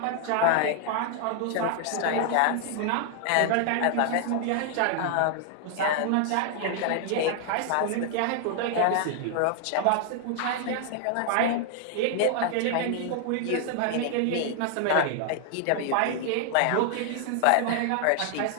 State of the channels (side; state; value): both; different; correlation 0.00